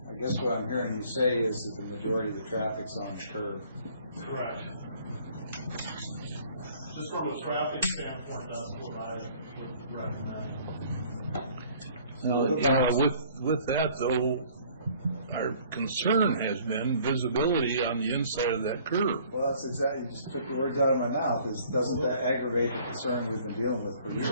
I guess what I'm hearing you say is that the majority of the traffic's on the curve. Correct. Just from a traffic standpoint, that's what I would recommend. Now, with that though, our concern has been visibility on the inside of that curve. Well, that's exactly, you just took the words out of my mouth, is doesn't that aggravate the concern we've been dealing with for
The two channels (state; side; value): inverted; both; correlation -0.56